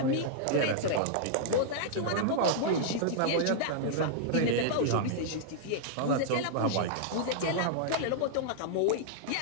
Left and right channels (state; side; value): different; both; correlation -0.01